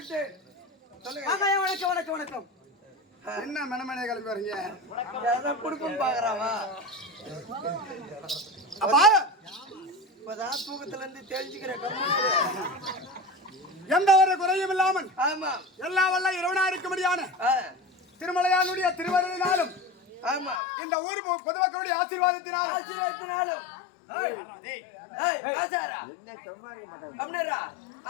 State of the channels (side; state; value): right; drops out; at 20.6 s